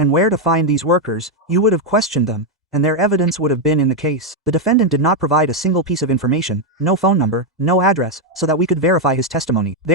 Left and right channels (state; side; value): normal; both; correlation 0.02